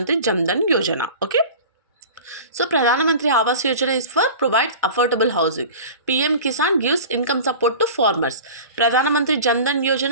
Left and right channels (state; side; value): inverted; both; correlation -0.37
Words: Jan Dhan Yojana. Okay. So Pradhan Mantri Awas Yojana is for provides affordable housing. PM Kisan gives income support to farmers. Pradhan Mantri Jan Dhan